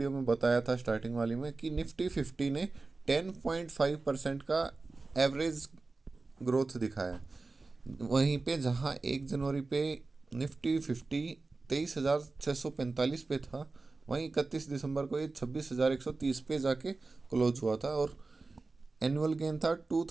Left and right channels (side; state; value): left; quieter; 3.7 dB